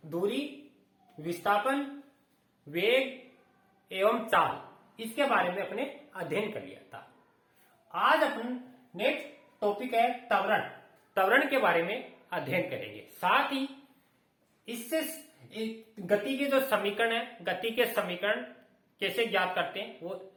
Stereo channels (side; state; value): both; identical; correlation 1.00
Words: दूरी, विस्थापन, वेग एवं चाल इसके बारे में अपने अध्ययन कर लिया था। आज अपन नेक्स्ट टॉपिक है त्वरण। त्वरण के बारे में अध्ययन करेंगे। साथ ही इससे गति के जो समीकरण है, गति के समीकरण कैसे ज्ञात करते हैं वो